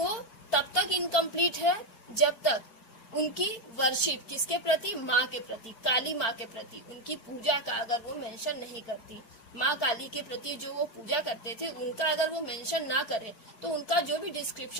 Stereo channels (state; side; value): late; right; 4.4 ms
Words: तब तक इनकम्प्लीट है जब तक उनकी वर्शिप किसके प्रति? माँ के प्रति, काली माँ के प्रति, उनकी पूजा का अगर वो मेंशन नहीं करती, माँ काली के प्रति जो वो पूजा करते थे उनका अगर वो मेंशन ना करे तो उनका जो भी